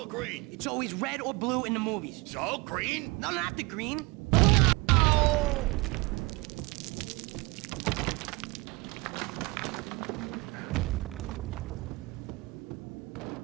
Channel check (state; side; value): quieter; left; 24.9 dB